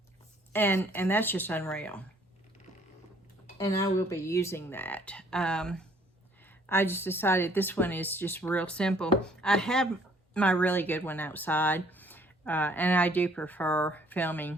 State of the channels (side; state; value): both; normal; correlation 0.61